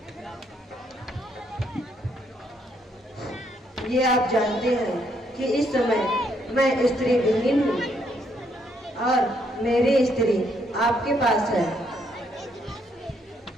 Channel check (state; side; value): normal; both; correlation 0.72